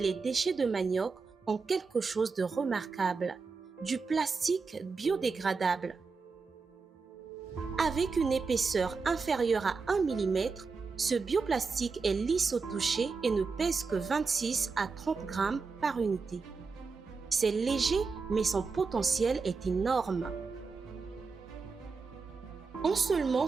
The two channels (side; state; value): left; quieter; 4.7 dB